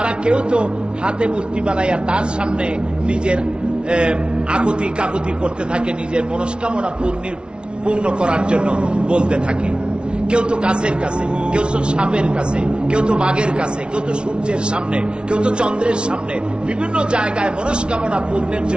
কেউ তো হাতে মূর্তি বানাইয়া তার সামনে নিজের আকুতি কাকুতি করতে থাকে, নিজের মনস্কামনা পূর্ণ করার জন্য বলতে থাকে। কেউ তো গাছের কাছে, কেউ তো সাপের কাছে, কেউ তো বাঘের কাছে, কেউ তো সূর্যের সামনে, কেউ তো চন্দ্রের সামনে, বিভিন্ন জায়গায় মনস্কামনা পূর্ণের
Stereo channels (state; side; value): late; left; 0.057 ms